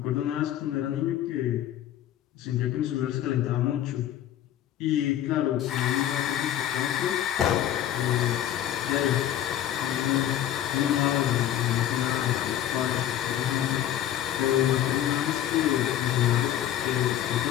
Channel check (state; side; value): quieter; right; 11.6 dB